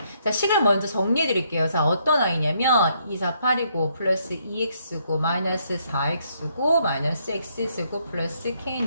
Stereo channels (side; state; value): both; inverted; correlation -0.72